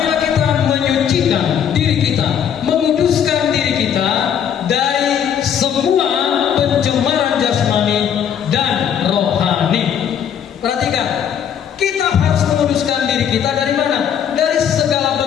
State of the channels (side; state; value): right; quieter; 8.7 dB